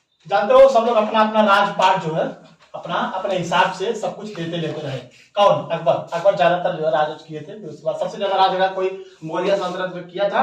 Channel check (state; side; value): identical; both; correlation 1.00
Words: जानते हो सब लोग अपना अपना राजपाट जो है अपना अपने हिसाब से सब कुछ लेते रहे। कौन? अकबर। अकबर ज्यादातर जो है राज किए थे। उसके बाद सबसे ज्यादा राज अगर कोई मौर्य सल्तनत में किया